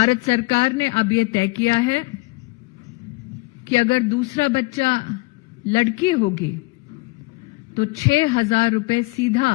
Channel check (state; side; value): quieter; right; 24.6 dB